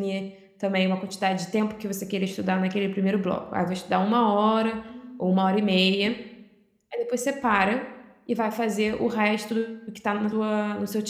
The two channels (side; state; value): both; identical; correlation 1.00